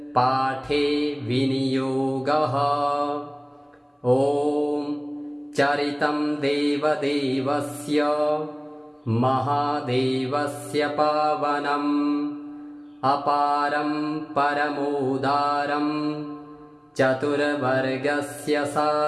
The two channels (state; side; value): identical; both; correlation 1.00